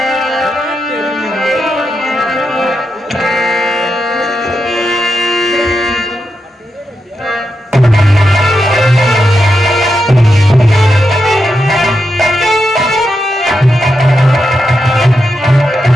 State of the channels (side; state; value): both; normal; correlation 0.86